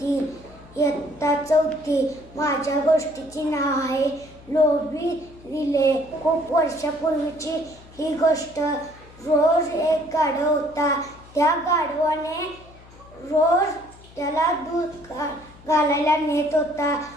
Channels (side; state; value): left; noise; hum, 22 dB below the sound